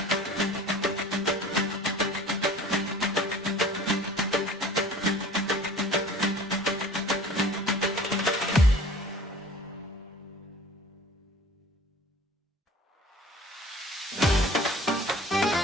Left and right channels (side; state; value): both; normal; correlation 0.45